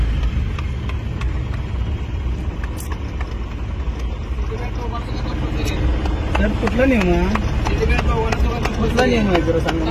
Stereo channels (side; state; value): both; identical; correlation 1.00